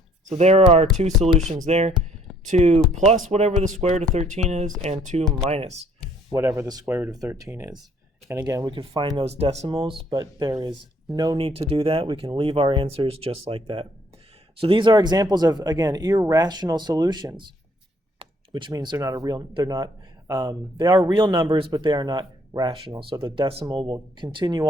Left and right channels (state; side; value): normal; both; correlation 0.63